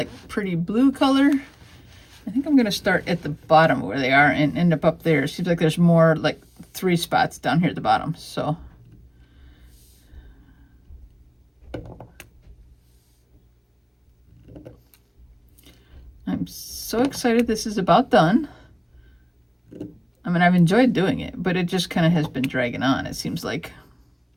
pretty blue color. I think I'm going to start at the bottom where they are and end up there. It seems like there's more, like 3 spots down here at the bottom. So I'm so excited this is about done. I mean, I've enjoyed doing it, but it just kind of has been dragging on, it seems like.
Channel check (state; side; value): identical; both; correlation 1.00